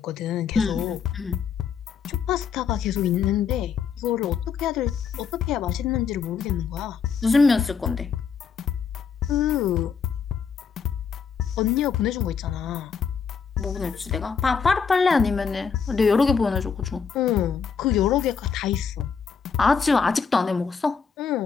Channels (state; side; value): quieter; right; 6.2 dB